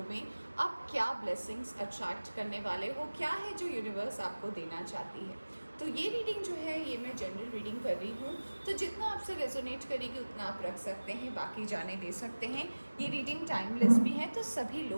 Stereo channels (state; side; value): inverted; both; correlation -1.00